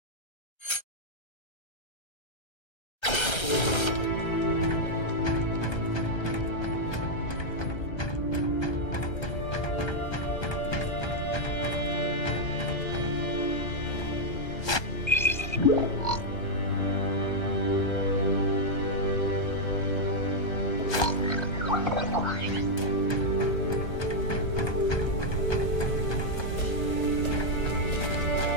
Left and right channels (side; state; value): right; late; 1.3 ms